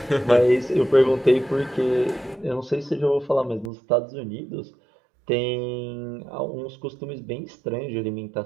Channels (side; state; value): left; drops out; at 3.7 s